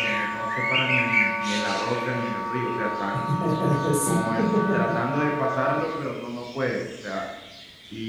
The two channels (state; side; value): identical; both; correlation 1.00